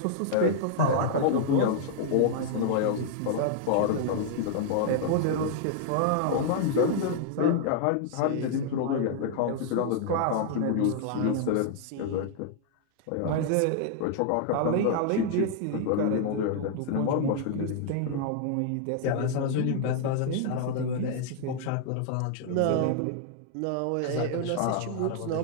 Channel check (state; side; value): different; both; correlation 0.00